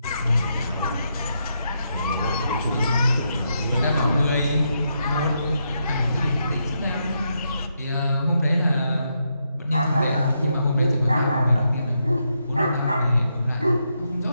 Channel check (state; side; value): inverted; both; correlation -0.81